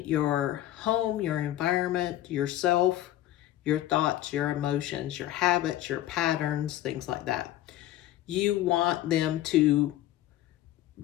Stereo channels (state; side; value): quieter; right; 13.8 dB